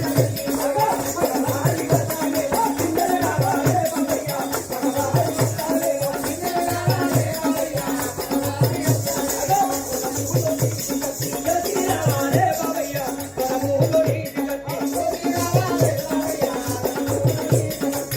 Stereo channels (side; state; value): both; identical; correlation 1.00